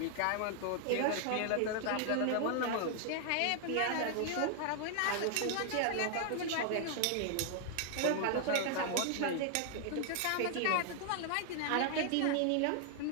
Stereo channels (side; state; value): both; different; correlation 0.00